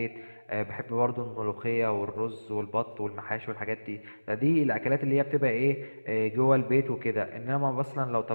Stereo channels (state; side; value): inverted; both; correlation -1.00